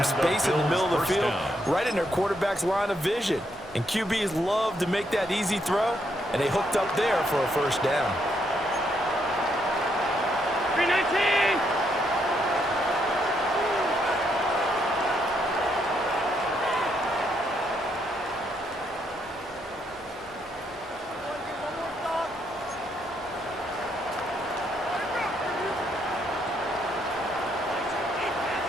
space in the middle of the field, right in their quarterback's line of vision. And QBs love to make that easy throw, and they hooked up there for a first down. 319!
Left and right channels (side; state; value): both; normal; correlation 0.76